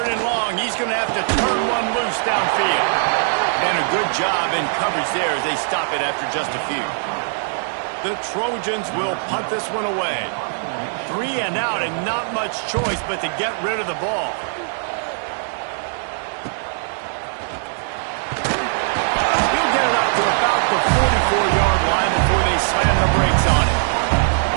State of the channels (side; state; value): left; silent; 65 dB below the other